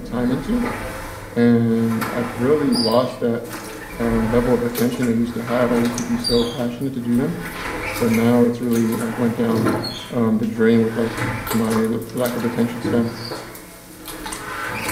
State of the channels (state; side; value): identical; both; correlation 1.00